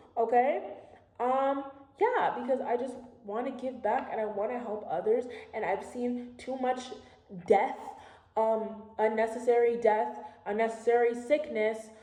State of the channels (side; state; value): both; identical; correlation 1.00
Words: okay? Yeah, because I just want to give back and I want to help others, and I've seen too much death, unnecessary sickness